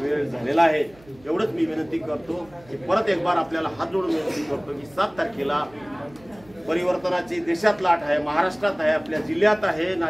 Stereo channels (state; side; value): noise; right; hum, 26 dB below the sound